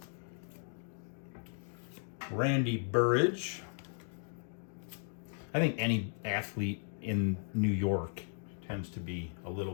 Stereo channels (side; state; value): right; silent; digital silence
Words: Randy Burridge. I think any athlete in New York tends to be a